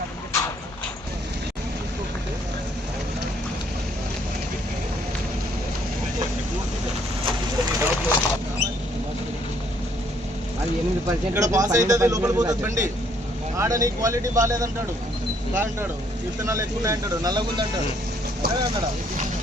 అది 8% ఇక్కడ పాస్ అవుతుంది, లోపల పోతుంది బండి. ఆడ నీ క్వాలిటీ బాగాలేదంటాడు, అంటాడు విత్తనాలు ఎక్కువ అంటాడు, నల్లగుందంటాడు. అదే అన్నాడా?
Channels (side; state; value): both; normal; correlation 0.66